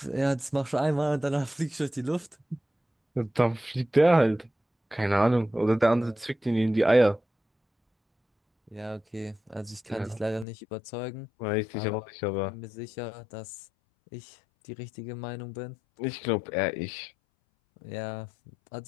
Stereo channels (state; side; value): drops out; right; at 10.5 s